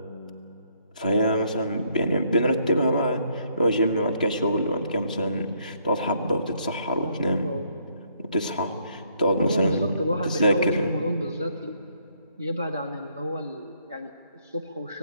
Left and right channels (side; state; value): both; inverted; correlation -0.70